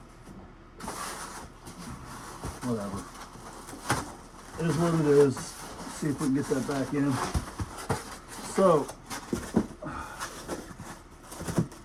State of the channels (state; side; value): identical; both; correlation 1.00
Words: Whatever. It is what it is. Let's see if we can get that back in. So,